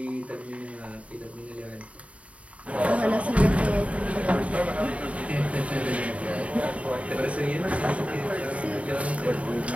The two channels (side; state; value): left; late; 0.065 ms